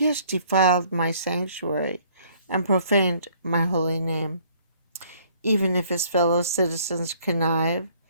has defiled my sanctuary and profaned my holy name. Even if his fellow citizens connive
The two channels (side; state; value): both; inverted; correlation -0.60